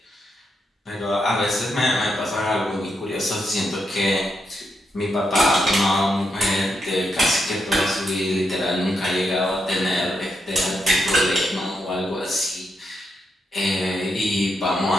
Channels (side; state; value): both; normal; correlation 0.82